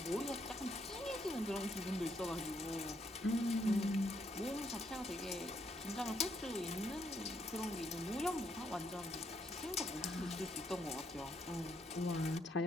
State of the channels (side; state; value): both; normal; correlation 0.74